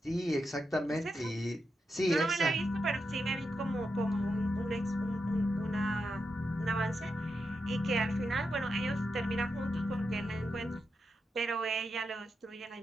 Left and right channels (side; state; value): both; normal; correlation 0.86